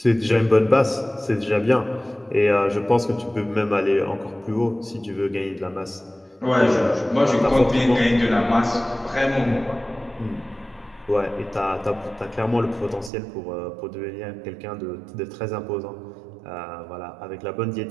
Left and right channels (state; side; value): drops out; left; at 13.1 s